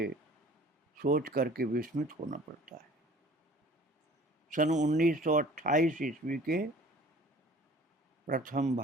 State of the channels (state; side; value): normal; both; correlation 0.49